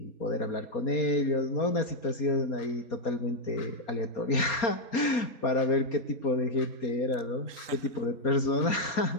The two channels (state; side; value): late; right; 4.3 ms